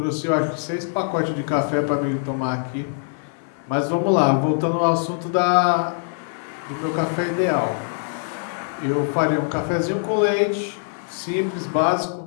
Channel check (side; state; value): right; silent; digital silence